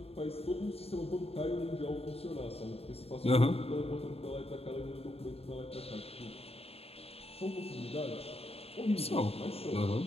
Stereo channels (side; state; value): right; late; 0.29 ms